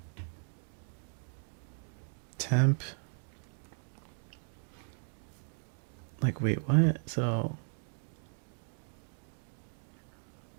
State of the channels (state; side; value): silent; left; 53 dB below the other